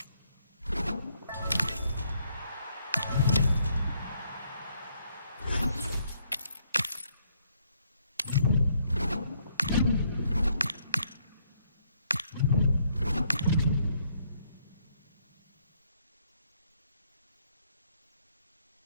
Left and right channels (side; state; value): both; inverted; correlation -0.71